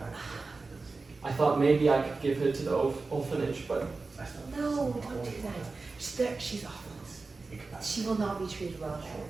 I thought maybe I could give her to the orphanage, but No, She's awful. Think about She will not be treated well it. there.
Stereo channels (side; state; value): left; quieter; 3.9 dB